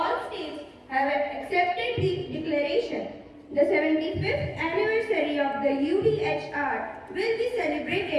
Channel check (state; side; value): identical; both; correlation 1.00